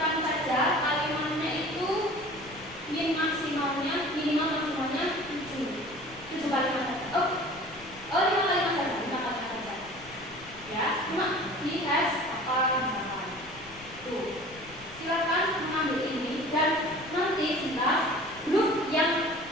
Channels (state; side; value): noise; left; rumble, 21 dB below the sound